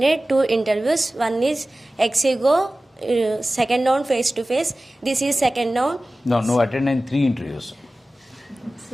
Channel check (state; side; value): normal; both; correlation 0.96